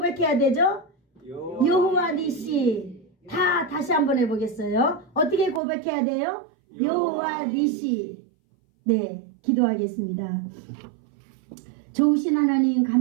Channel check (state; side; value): drops out; left; at 5.6 s